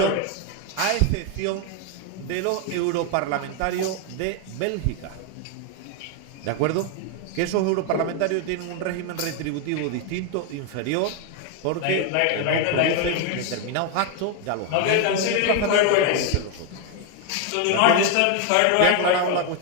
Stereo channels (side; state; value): both; different; correlation 0.01